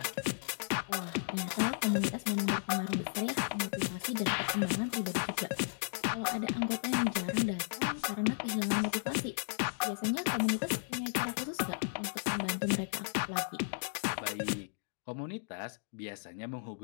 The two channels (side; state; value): right; silent; digital silence